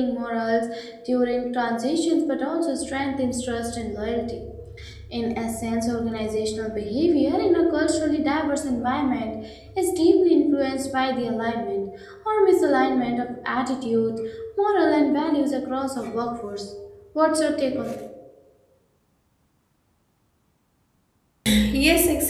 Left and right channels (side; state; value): both; identical; correlation 1.00